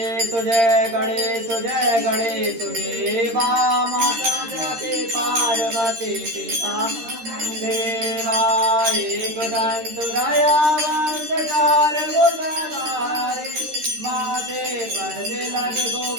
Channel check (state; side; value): late; left; 13 ms